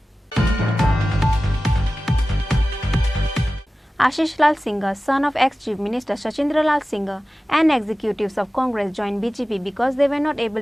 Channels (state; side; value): normal; both; correlation 0.95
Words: Ashish Lal Singh, son of ex-Chief Minister Sachindra Lal Singh, and executives of Congress joined BJP because they were not